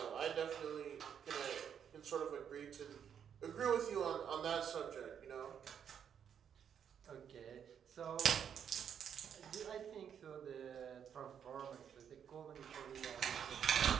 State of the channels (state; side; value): quieter; left; 8.2 dB